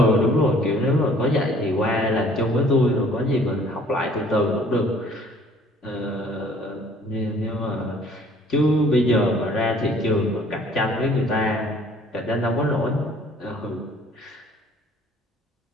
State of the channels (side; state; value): both; normal; correlation 0.55